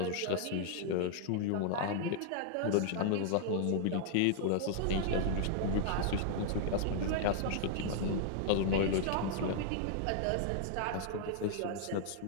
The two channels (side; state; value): both; different; correlation -0.01